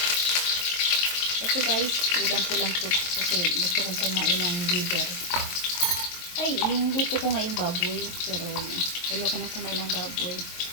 Ito guys, ulam ko lang to. Kasi gusto kong kumain ng liver. Ay, yung luto ko ngayong baboy. Pero ayoko nang kumain ng baboy.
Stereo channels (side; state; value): right; late; 23 ms